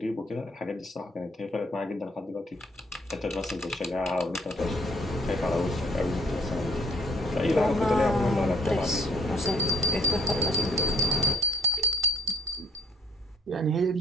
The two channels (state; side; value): normal; both; correlation 0.61